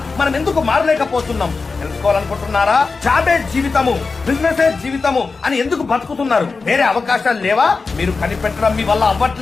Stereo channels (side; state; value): right; quieter; 4.3 dB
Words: మనం ఎందుకు మారలేకపోతున్నాం? తెలుసుకోవాలనుకుంటున్నారా? జాబే జీవితము, బిజినెస్ జీవితము అని ఎందుకు బతుకుతున్నారు? వేరే అవకాశాలు లేవా? మీరు కనిపెట్టడం మీ వల్ల